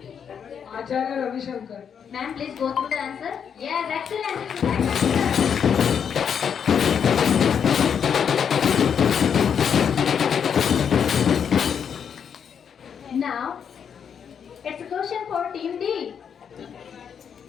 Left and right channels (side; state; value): right; quieter; 7.5 dB